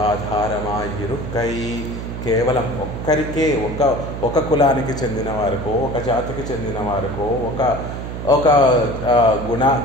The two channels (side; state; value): right; noise; hum, 7 dB below the sound